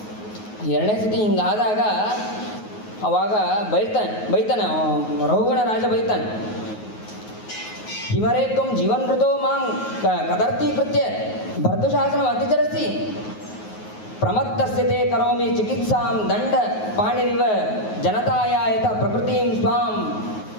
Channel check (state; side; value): late; right; 9.4 ms